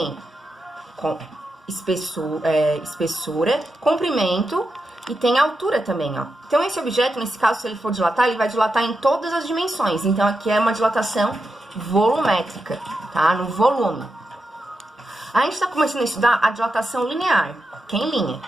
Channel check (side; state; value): both; normal; correlation 0.87